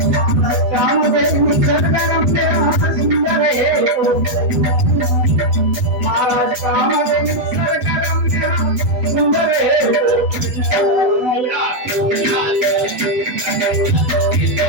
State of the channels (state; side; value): late; left; 8.0 ms